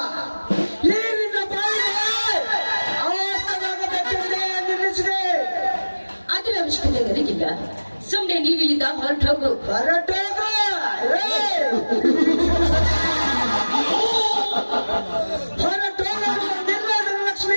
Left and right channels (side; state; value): both; inverted; correlation -1.00